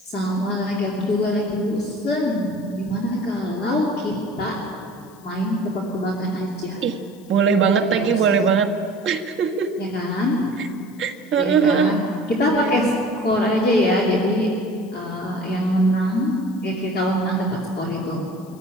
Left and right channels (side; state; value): left; noise; hiss, 27 dB below the sound